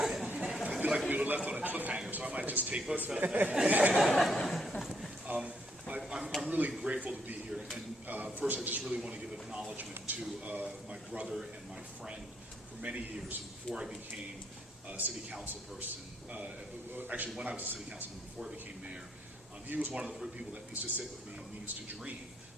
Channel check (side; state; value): both; normal; correlation 0.73